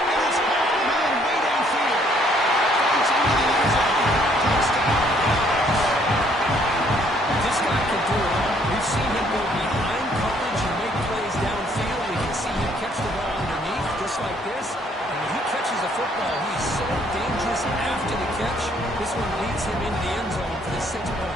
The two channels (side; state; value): both; normal; correlation 0.65